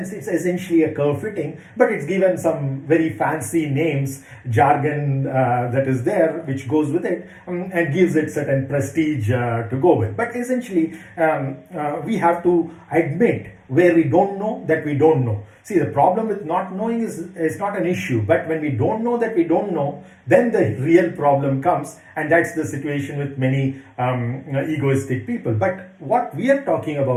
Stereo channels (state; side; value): identical; both; correlation 1.00